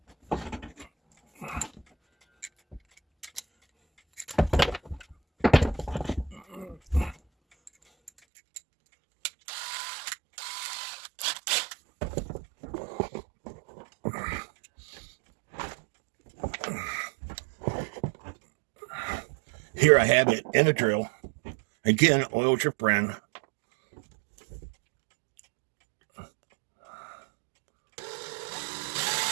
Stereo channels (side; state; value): left; drops out; at 8.1 s